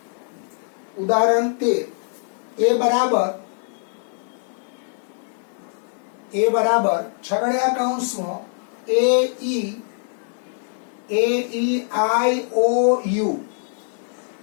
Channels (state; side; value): silent; right; digital silence